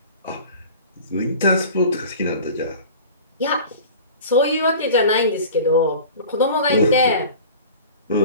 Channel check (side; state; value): both; inverted; correlation -0.40